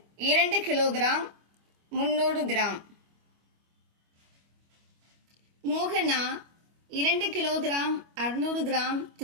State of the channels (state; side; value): late; left; 25 ms